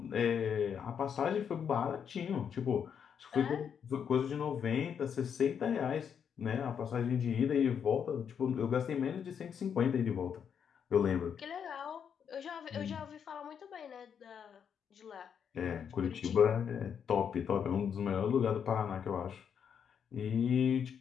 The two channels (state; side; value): quieter; right; 7.6 dB